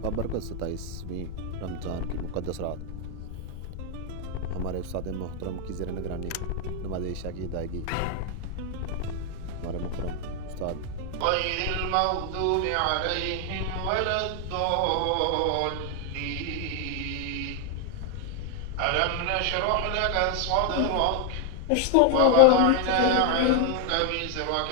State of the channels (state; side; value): different; both; correlation 0.00